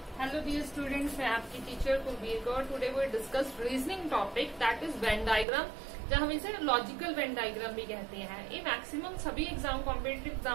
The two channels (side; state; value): left; drops out; at 5.5 s